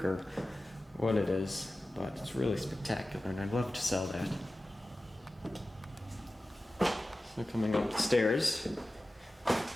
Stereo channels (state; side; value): normal; both; correlation 0.95